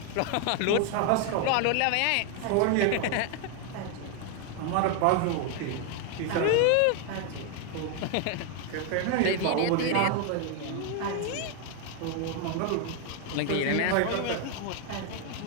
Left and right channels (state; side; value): different; both; correlation 0.00